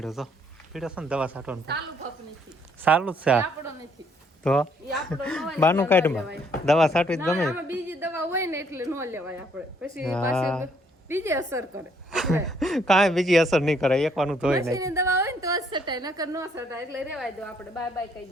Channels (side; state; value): both; normal; correlation 0.67